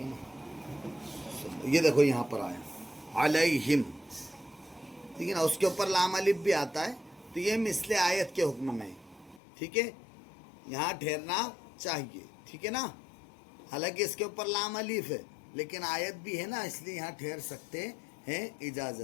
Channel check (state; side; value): drops out; right; at 9.4 s